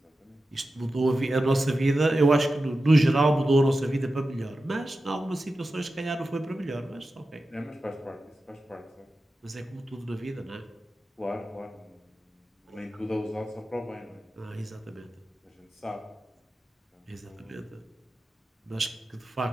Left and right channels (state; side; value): normal; both; correlation 0.93